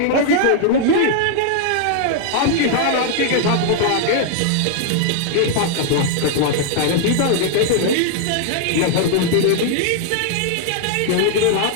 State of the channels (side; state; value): both; different; correlation 0.00